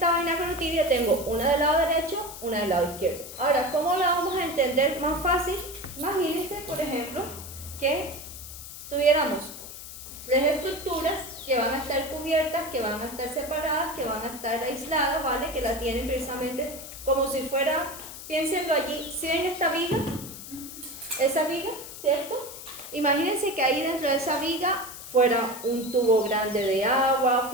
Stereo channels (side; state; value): left; noise; hiss, 12 dB below the sound